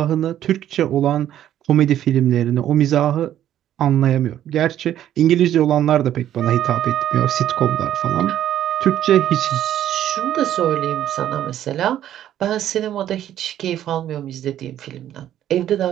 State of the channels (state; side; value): quieter; left; 11.5 dB